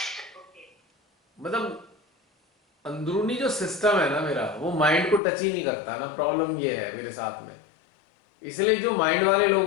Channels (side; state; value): right; drops out; at 5.2 s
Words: मतलब अंदरूनी जो सिस्टम है ना मेरा, वो माइंड को टच ही नहीं करता ना। प्रॉब्लम ये है मेरे साथ में। इसलिए जो माइंड वाले लोग